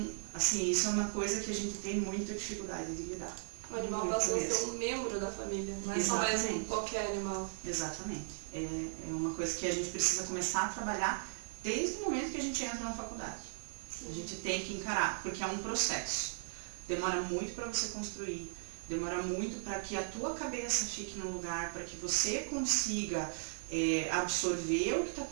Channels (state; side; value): silent; left; digital silence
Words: assim, isso é uma coisa que a gente tem muita dificuldade de lidar. O animal passou a ser um membro da família, não é só mais qualquer animal. Exatamente. É uma coisa que a gente precisa começar a trabalhar desde o momento que a gente entra na faculdade. A gente tem que encarar, porque é um processo. Demora muito para você construir, demora muito para que a tua cabeça fique no lugar, para que você consiga absorver o que está